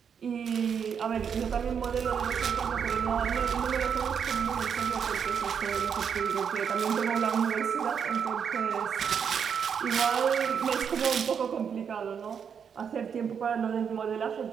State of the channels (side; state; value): left; quieter; 7.2 dB